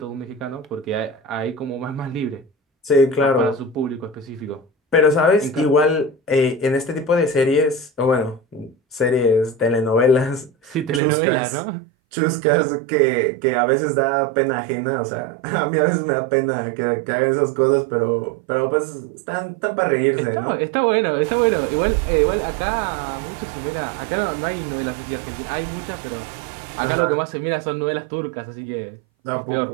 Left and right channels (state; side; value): drops out; left; at 11.0 s